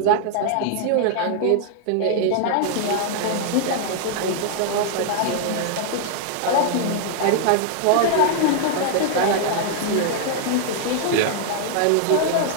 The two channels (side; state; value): both; different; correlation -0.01